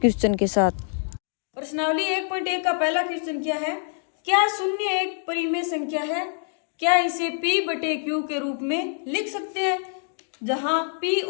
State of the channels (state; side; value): silent; right; digital silence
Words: के साथ। प्रश्नावली 1.1 का पहला क्वेश्चन क्या है? क्या शून्य एक परिमेय संख्या है? क्या इसे p/q के रूप में लिख सकते हैं, जहां p